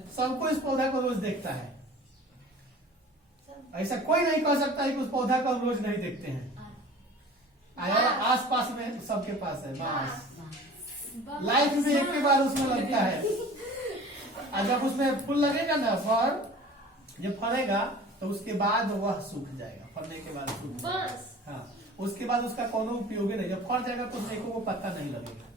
सबको इस पौधा को रोज देखता है। ऐसा कोई नहीं कह सकता है कि उस पौधा को हम रोज नहीं देखते हैं। आस पास में सबके पास है बांस। लाइफ में एक के बार उसमें लगता है, और जब उसमें फूल लगेगा ना, फल जब फलेगा तो उसके बाद वह सूख जाएगा। फलने के बाद सूख जाएगा। हाँ, उसके बाद उसका कोनो उपयोग नहीं। जब फल जाएगा तो देखो वो पत्ता नहीं लगेगा।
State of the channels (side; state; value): both; normal; correlation 0.43